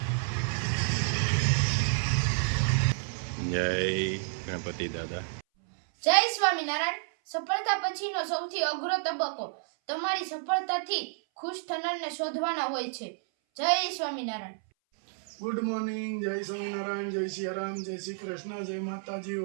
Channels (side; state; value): left; silent; 58 dB below the other